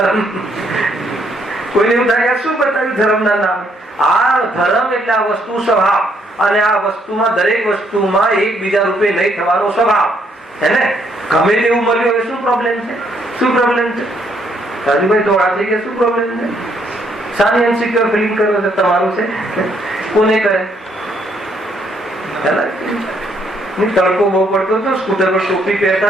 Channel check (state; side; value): normal; both; correlation 0.70